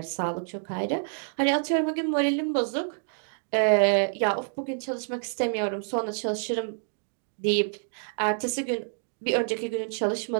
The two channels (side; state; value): left; silent; 60 dB below the other